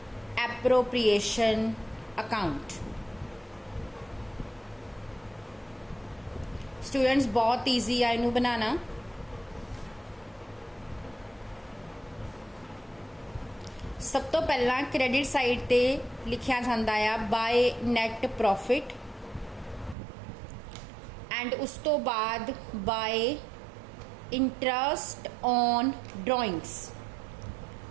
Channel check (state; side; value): drops out; left; at 20.0 s